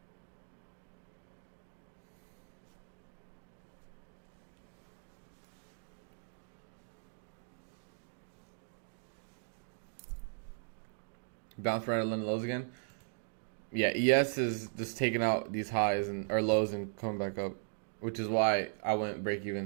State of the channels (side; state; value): left; silent; digital silence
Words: Bounce right at London lows again. Yeah, ES is just taking out these highs or lows and coming back up, which is why I went break